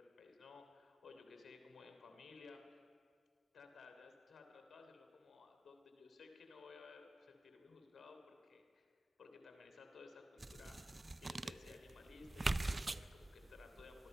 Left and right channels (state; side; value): normal; both; correlation 0.97